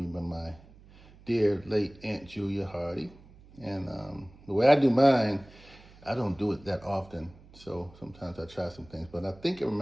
by my dear late Aunt Julia Hardy, and the way I do mine, I don't do it that often, so sometimes I try some things, but I think I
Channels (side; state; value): right; noise; hum, 23 dB below the sound